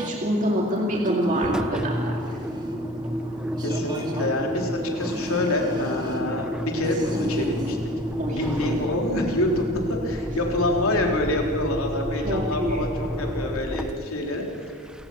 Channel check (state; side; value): normal; both; correlation 0.40